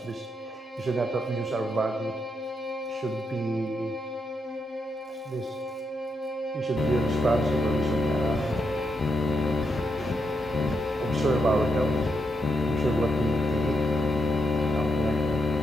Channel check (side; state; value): both; normal; correlation 0.82